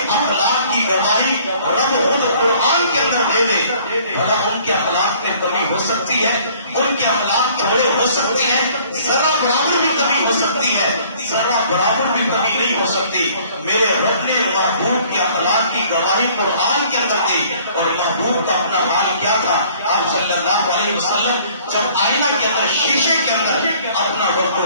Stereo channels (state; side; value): inverted; both; correlation -0.56